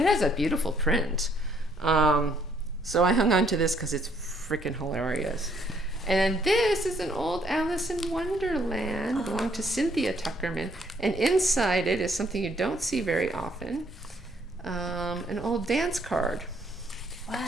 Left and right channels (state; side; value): normal; both; correlation 0.67